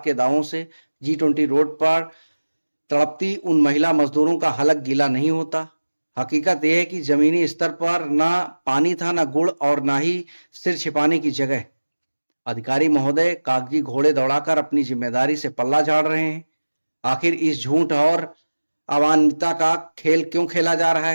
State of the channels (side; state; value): both; inverted; correlation -1.00